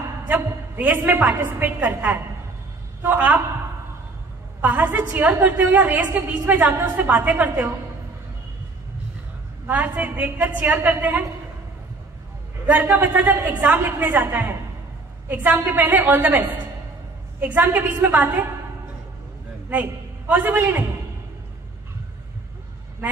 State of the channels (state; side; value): quieter; left; 3.5 dB